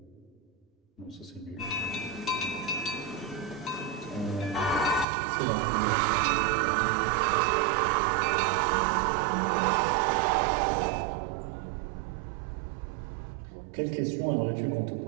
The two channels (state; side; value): drops out; left; at 5.1 s